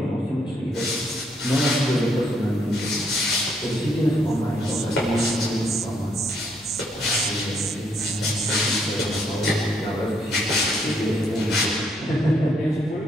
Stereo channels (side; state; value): both; normal; correlation 0.72